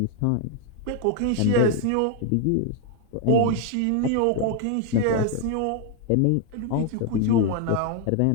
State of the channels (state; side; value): different; both; correlation 0.00